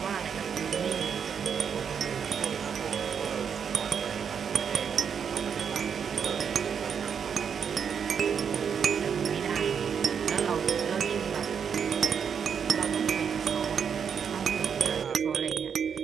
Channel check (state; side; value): quieter; left; 7.1 dB